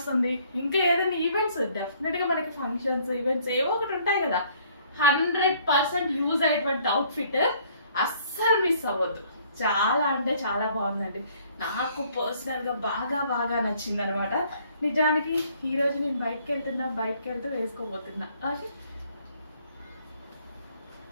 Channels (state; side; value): inverted; both; correlation -0.61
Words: ఇంకా ఏదైనా ఈవెంట్స్, డెఫినెట్ గా మనకి ఫంక్షన్స్, ఈవెంట్స్ ఏవో ఒకటి ఉంటాయి కదా. 100% యూజ్ అయ్యేటువంటి అవుట్ఫిట్, అస్సలు మిస్ అవ్వద్దు. చాలా అంటే చాలా బాగుందండి, నాకు పర్సనల్ గా బాగా బాగా నచ్చింది అనమాట. నిజానికి ఈ రోజు నేను బయటకు వెళ్తూ వేసుకోబోతున్నా.